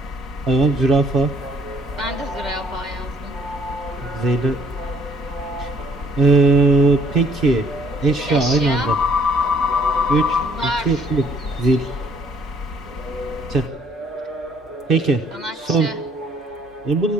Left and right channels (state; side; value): normal; both; correlation 0.61